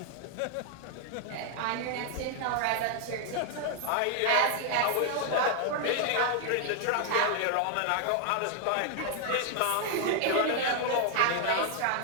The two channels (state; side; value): different; both; correlation 0.00